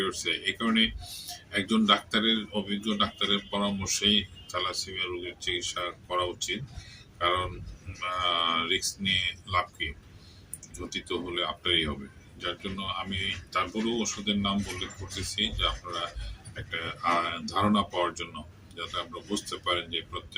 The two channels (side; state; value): both; identical; correlation 1.00